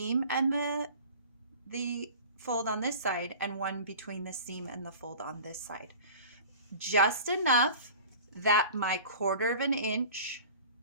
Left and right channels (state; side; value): inverted; both; correlation -0.41